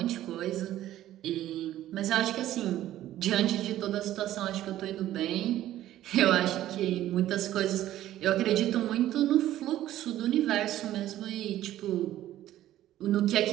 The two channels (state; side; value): quieter; left; 13.4 dB